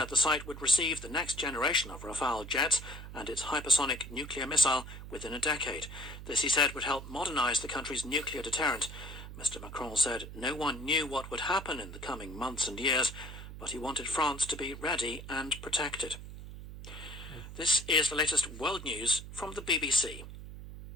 the site would receive the next generation of Rafale jets and its hypersonic nuclear missile within a decade. This, he said, would help modernize the country's nuclear deterrent. Mr. Macron said no one knew what would happen in the coming months and years, but he wanted France to be ready and protected. This is the latest world news from the BBC.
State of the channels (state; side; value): noise; right; hum, 12 dB below the sound